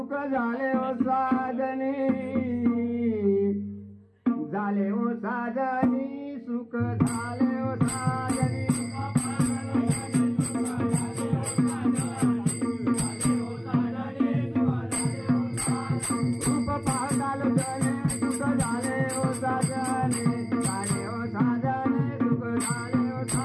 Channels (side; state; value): both; identical; correlation 1.00